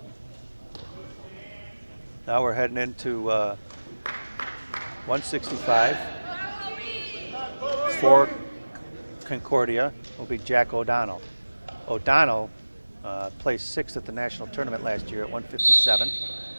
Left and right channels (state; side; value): inverted; both; correlation -1.00